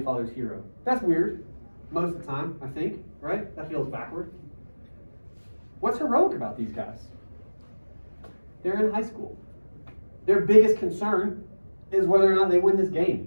father's hero. That's weird most of the time, I think, right? That feels backward. What's heroic about these guys? They're in high school. Their biggest concern is whether or not they win this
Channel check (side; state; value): both; inverted; correlation -1.00